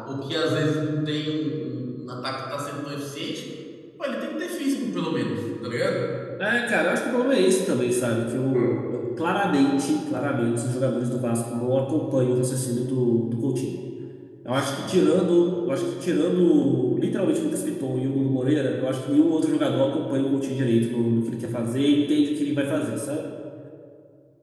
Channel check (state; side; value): identical; both; correlation 1.00